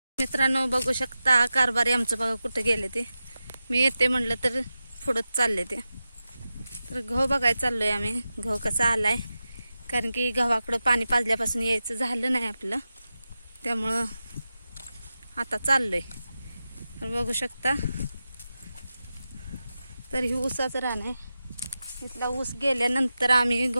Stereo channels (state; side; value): inverted; both; correlation -0.93